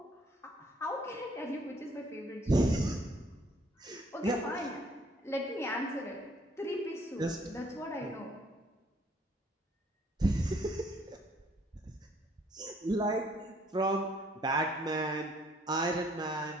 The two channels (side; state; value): both; normal; correlation 0.63